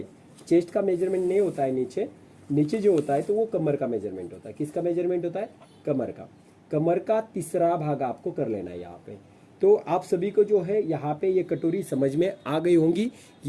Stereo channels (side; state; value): both; identical; correlation 1.00